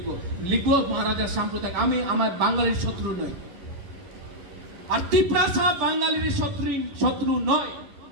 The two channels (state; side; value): late; left; 11 ms